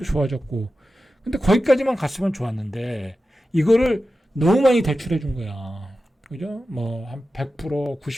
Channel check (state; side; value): normal; both; correlation 0.93